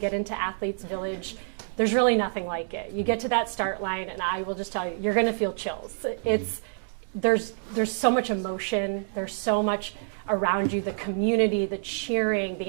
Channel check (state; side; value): silent; left; digital silence